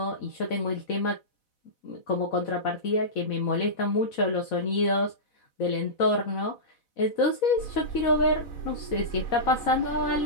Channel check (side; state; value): right; late; 4.0 ms